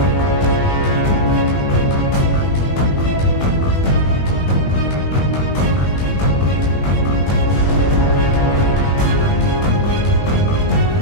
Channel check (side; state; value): right; late; 21 ms